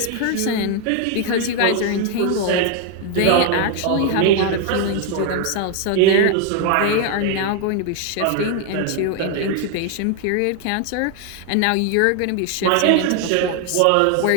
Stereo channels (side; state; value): both; different; correlation 0.01